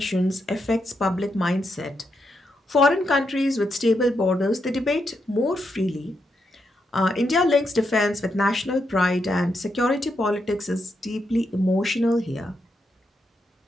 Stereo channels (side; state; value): both; normal; correlation 0.82